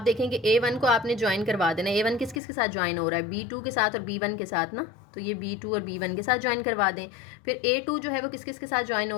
देखेंगे A1 को आपने ज्वाइन करवा देना। A1 किस किस के साथ ज्वाइन हो रहा है? B2 के साथ और B1 के साथ ना, तो ये B2 और B1 के साथ ज्वाइन करवा दें। फिर A2 जो है वो किस किस के साथ ज्वाइन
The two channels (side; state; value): right; drops out; at 2.4 s